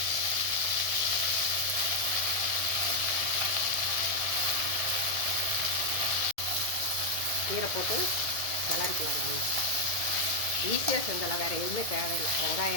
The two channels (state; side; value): late; right; 1.7 ms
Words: கீரை போட்டு கலரிக்கலாம். ஈஸியாக செஞ்சலாம், வேறு எதுவுமே தேவையில்லை.